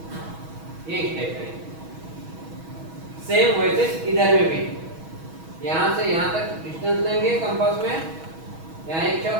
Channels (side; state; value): left; late; 6.2 ms